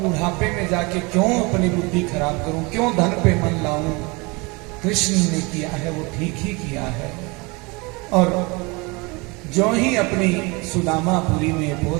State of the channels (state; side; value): quieter; left; 27.0 dB